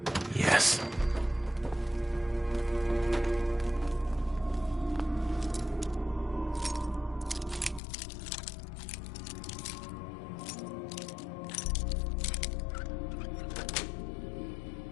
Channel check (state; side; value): drops out; right; at 7.8 s